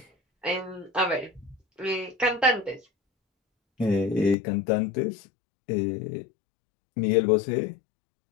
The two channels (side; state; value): right; drops out; at 4.4 s